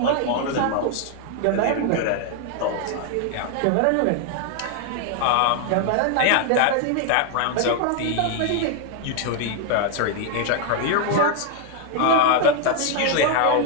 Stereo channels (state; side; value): different; both; correlation 0.00